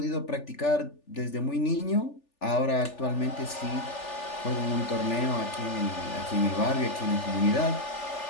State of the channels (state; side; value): late; right; 3.4 ms